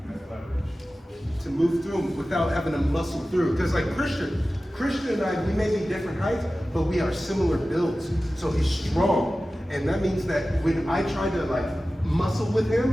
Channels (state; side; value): normal; both; correlation 0.95